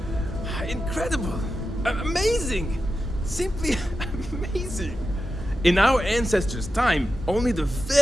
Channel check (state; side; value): normal; both; correlation 0.90